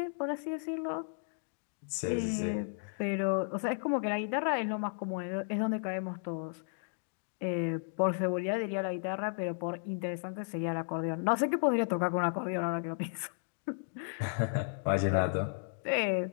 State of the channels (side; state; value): right; silent; digital silence